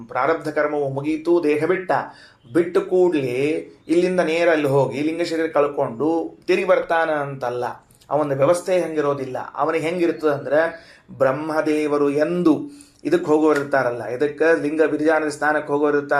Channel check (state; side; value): identical; both; correlation 1.00